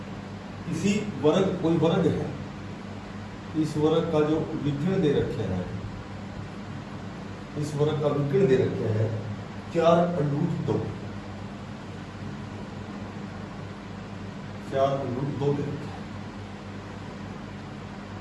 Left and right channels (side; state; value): both; identical; correlation 1.00